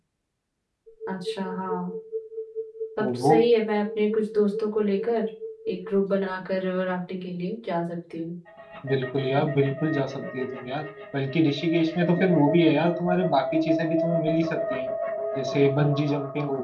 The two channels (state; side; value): identical; both; correlation 1.00